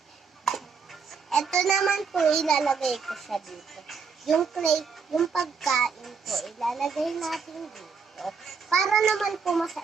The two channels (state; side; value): quieter; left; 5.6 dB